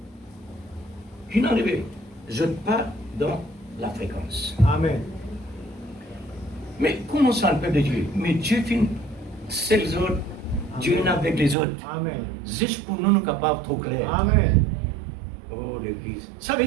Qui n'en est? Je pars dans la fréquence. Amen. Mais comment ça le peuple de Dieu? Mais Dieu finit, c'est les autres. Dieu est avec les autres. Amen. Juste pour nous, nous capables trop clair. Amen. Oh, l'Église. Ça veut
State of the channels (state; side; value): drops out; left; at 11.6 s